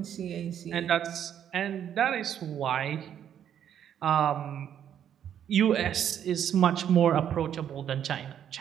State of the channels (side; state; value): left; quieter; 9.5 dB